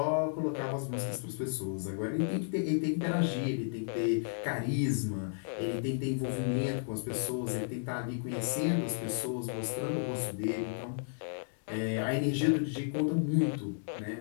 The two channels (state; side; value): silent; right; digital silence